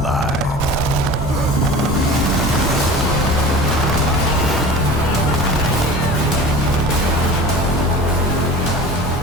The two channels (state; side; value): normal; both; correlation 0.38